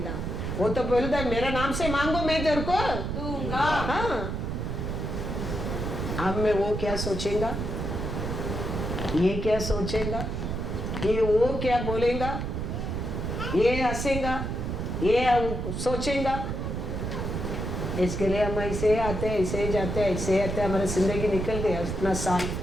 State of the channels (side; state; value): right; noise; rumble, 3 dB below the sound